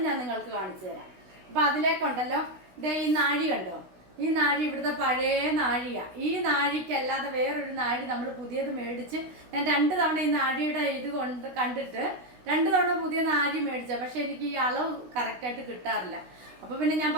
ഞാൻ നിങ്ങൾക്ക് കാണിച്ചു തരാം. അപ്പം അതിലേക്കുണ്ടല്ലോ, ഇതേ ഈ നാഴി കണ്ടോ, ഈ നാഴി ഇവിടുത്തെ പഴയ നാഴിയാണ്. ഈ നാഴിക്കല്ലാതെ വേറൊരു നാഴി നമ്മൾ പുതിയത് മേടിച്ച്, ഞാൻ 2 തവണ ഈ നാഴിയുടെ ഇത് കണ്ടിട്ട് 2 തവണ പുതിയ നാഴി മേടിച്ച, പക്ഷെ എനിക്ക് ഈ അളവ് കറക്റ്റായിട്ട് കിട്ടാറില്ല. അപ്പോൾ പിന്നെ ഞാൻ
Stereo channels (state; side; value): late; left; 16 ms